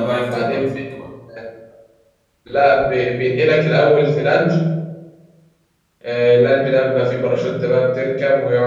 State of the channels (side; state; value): both; identical; correlation 1.00